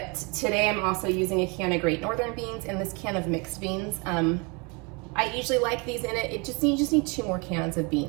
today I'm also using a can of Great Northern beans and this can of mixed beans. I usually like these in it. You just need 2 more cans of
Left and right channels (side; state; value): left; quieter; 30.4 dB